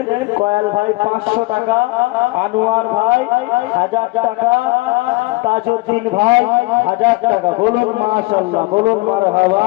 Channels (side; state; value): right; quieter; 23.8 dB